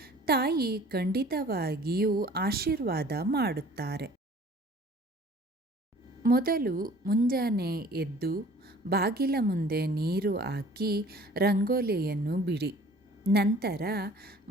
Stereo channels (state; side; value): normal; both; correlation 0.50